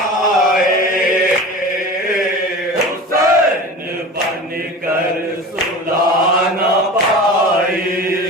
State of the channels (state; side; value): normal; both; correlation 0.34